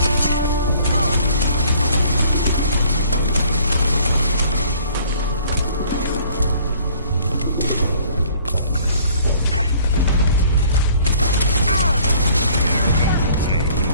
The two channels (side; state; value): both; inverted; correlation -0.56